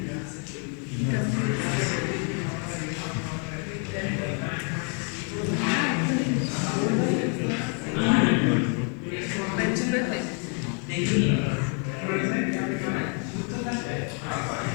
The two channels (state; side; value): quieter; right; 39.9 dB